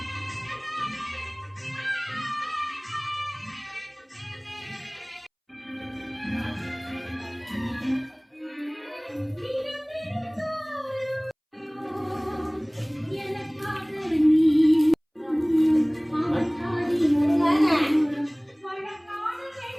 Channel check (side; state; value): both; identical; correlation 1.00